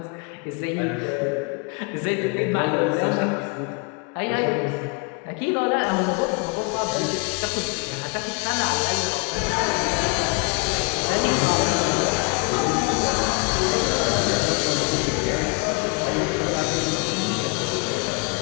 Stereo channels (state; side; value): quieter; right; 33.5 dB